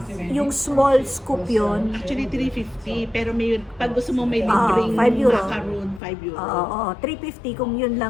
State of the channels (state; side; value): drops out; right; at 6.0 s